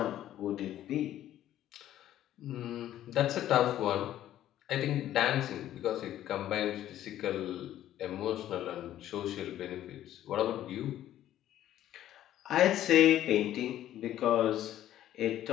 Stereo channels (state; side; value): quieter; right; 12.5 dB